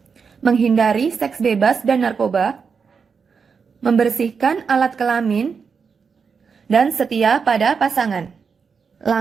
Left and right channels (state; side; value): quieter; left; 5.8 dB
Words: menghindari seks bebas dan narkoba, membersihkan alat kelamin, dan setia pada pasangan.